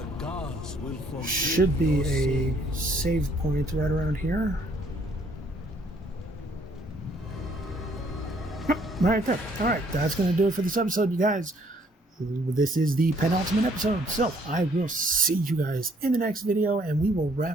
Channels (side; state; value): both; normal; correlation 0.64